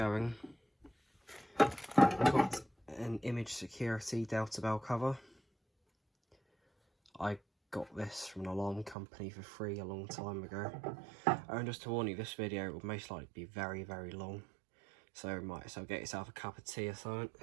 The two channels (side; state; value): left; drops out; at 9.0 s